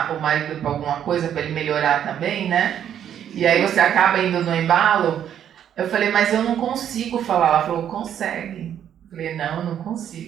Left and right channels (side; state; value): left; quieter; 9.7 dB